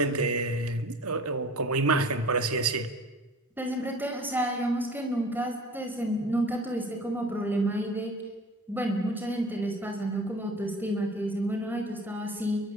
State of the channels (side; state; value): both; normal; correlation 0.43